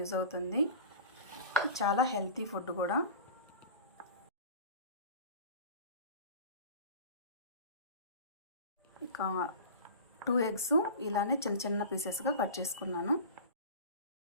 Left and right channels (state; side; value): inverted; both; correlation -0.35